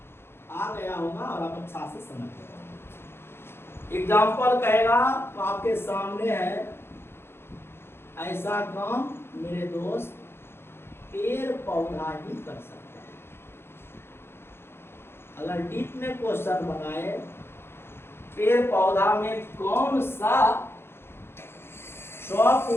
आ गया होगा और आप अच्छा से समझ गए। एग्जाम्पल कहेगा तो आपके सामने है, ऐसा काम मेरे दोस्त पेड़ पौधा ही कर सकता है। अगर डीप में क्वेश्चन बनाए, पेड़ पौधा में कौन सा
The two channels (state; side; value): late; right; 0.11 ms